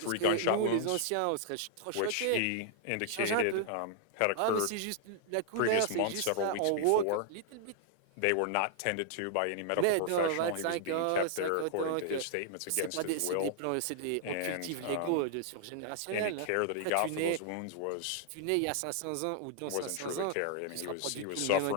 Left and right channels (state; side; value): different; both; correlation -0.01